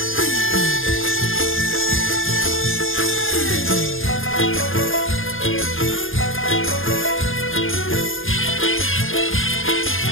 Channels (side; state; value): right; late; 0.59 ms